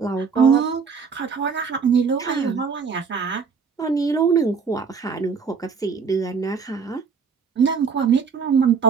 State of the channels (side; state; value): left; quieter; 5.7 dB